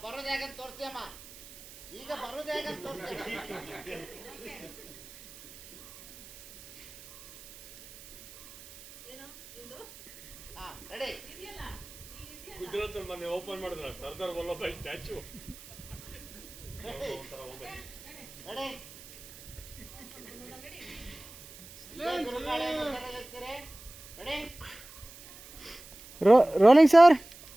ಬರೋದು ಹೇಗಂತ ತೋರಿಸ್ತೀಯಮ್ಮ. ಈಗ ಬರೋದು ಹೇಗಂತ ತೋರಿಸ್ತೀಯ. ಹಾ ರೆಡಿ. ಗುಜರಾತ್ ಮೊನ್ನೆ ಓಪನ್ ಮಾಡಿದ್ರ Sardar Vallabhai statue. Ready. Rolling sir.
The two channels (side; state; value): right; noise; hiss, 18 dB below the sound